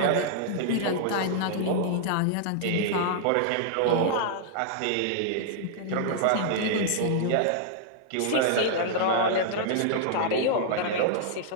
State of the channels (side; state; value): both; different; correlation -0.01